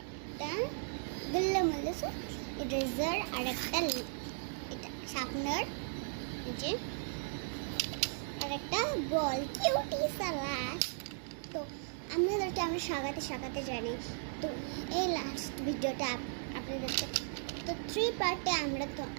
একটা গুল্লা মল্লিস ইরেজার আর একটা এটা শার্পনার যে আর একটা বল কিউটি সালাস। তো আপনাদেরকে আমি সাগাতে জানি। তো এই লাস্ট ভিডিওটা আপনাদেরকে তো 3 পার্টে আমরা তো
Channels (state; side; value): silent; left; digital silence